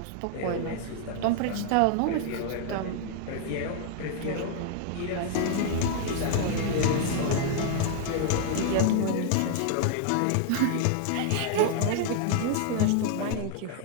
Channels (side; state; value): both; different; correlation 0.00